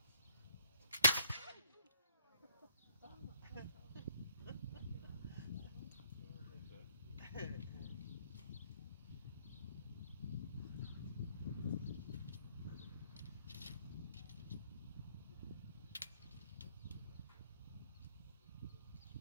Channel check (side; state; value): both; inverted; correlation -0.69